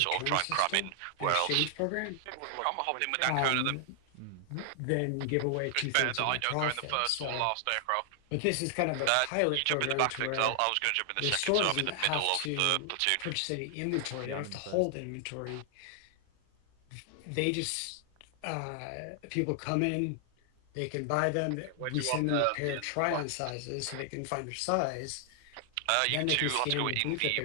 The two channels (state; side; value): different; both; correlation 0.00